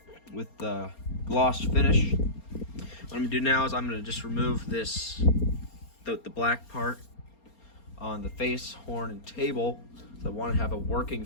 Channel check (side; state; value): right; late; 4.3 ms